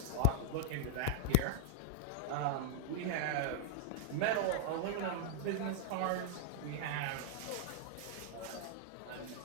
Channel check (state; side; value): different; both; correlation -0.01